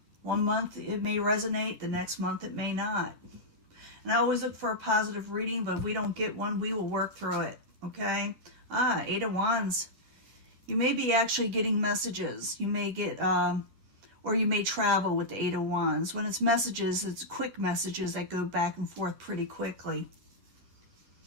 One month it may resonate, the next month it may not. And I always look for a positive reading, but if we don't get one, we will work through it, okay? Eight of Wands. You may be actually getting messages. You may get, or you may travel with the Eight of Wands. When it's messages, it's quick messages that go back and forth pretty quickly.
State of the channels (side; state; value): left; late; 10 ms